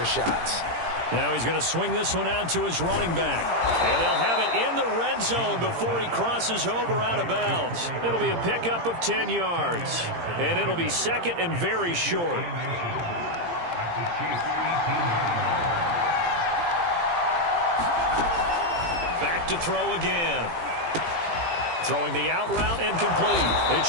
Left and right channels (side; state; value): left; late; 17 ms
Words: shots. Now he's going to swing this one out to his running back. And they'll have it in the red zone before he crosses over out of bounds. It'll be a pickup of 10 yards. And it'll be second and very short. Back to throw again. Throwing the out route and complete. It's